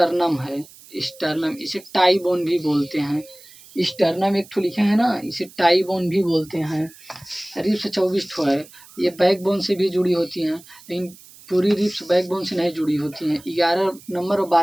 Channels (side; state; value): right; noise; hiss, 22 dB below the sound